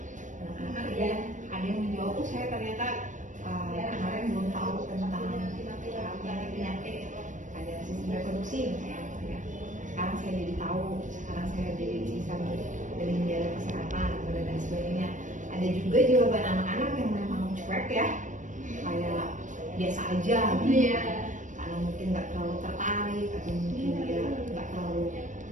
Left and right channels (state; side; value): late; left; 0.37 ms